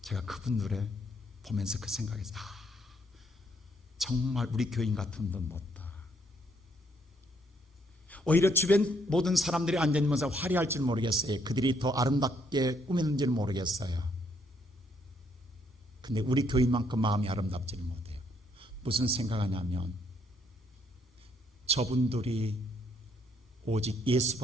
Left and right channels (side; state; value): both; normal; correlation 0.71